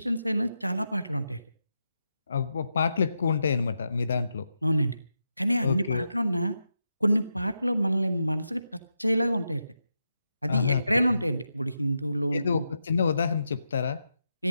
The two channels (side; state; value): both; inverted; correlation -0.87